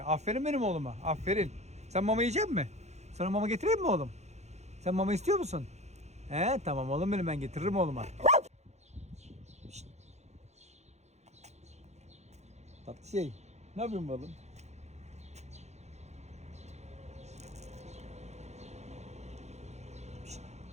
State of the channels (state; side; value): late; left; 0.32 ms